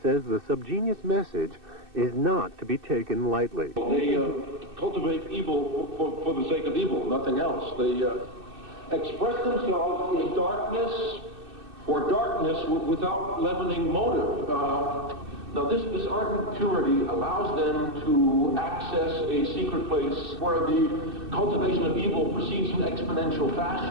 says the subgenius message is not to be taken lightly. They cultivate evil for the sake of evil, nothing else. They express themselves in darkness for darkness without leavening motive. Now, this ardent purity allows them to access a secret place where the cultivation of evil proceeds in exponential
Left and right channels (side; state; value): left; late; 2.6 ms